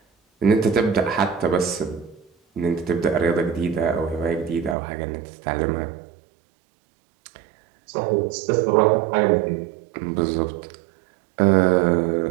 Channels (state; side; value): drops out; left; at 4.8 s